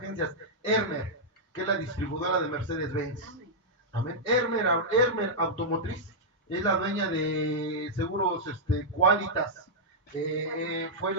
que es la distribuidora de Mercedes-Benz. Amén. Hermer Automotriz, es la dueña de Seguros Qualitas.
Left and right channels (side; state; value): both; normal; correlation -0.08